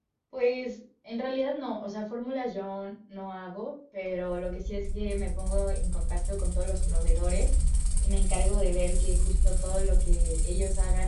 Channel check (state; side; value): identical; both; correlation 1.00